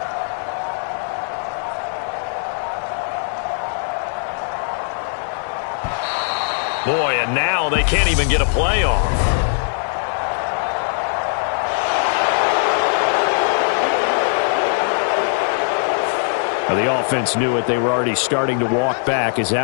Boy, and now they can't even get a play off. Now the offense knew it. They were already starting to walk back as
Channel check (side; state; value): right; silent; digital silence